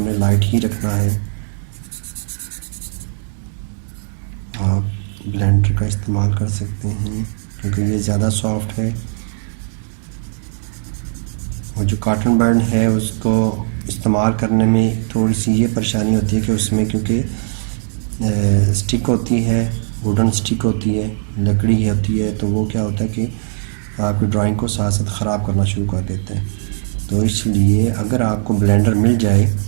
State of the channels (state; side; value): silent; left; digital silence